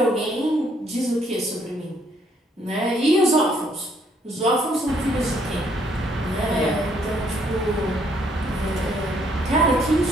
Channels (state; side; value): normal; both; correlation 0.68